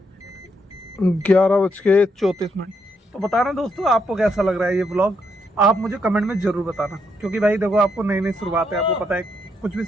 11:34। तो बताना दोस्तों आपको कैसा लग रहा है ये व्लॉग, आप मुझे कमेंट में ज़रूर बताना। क्योंकि भाई देखो आपको नई नई शुरुआत है, आपको पता है कुछ भी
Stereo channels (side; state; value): both; normal; correlation 0.77